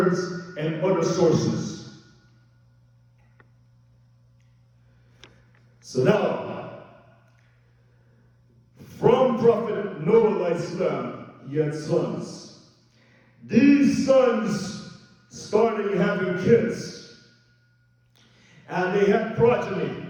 and other sources. So now, from Prophet Prophet Noah Alahisalam, he had sons. These sons started having kids, and they had progeny,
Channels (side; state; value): both; identical; correlation 1.00